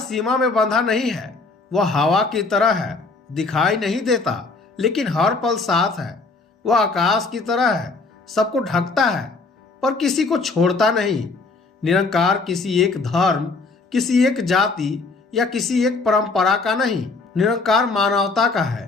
में बंधा नहीं है। वह हवा की तरह है, दिखाई नहीं देता लेकिन हर पल साथ है। वह आकाश की तरह है, सबको ढकता है पर किसी को छोड़ता नहीं। निरंकार किसी एक धर्म, किसी एक जाति या किसी एक परंपरा का नहीं, निरंकार मानवता का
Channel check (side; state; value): right; quieter; 3.9 dB